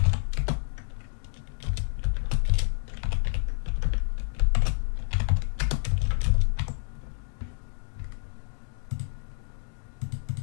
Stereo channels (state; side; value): silent; right; 59 dB below the other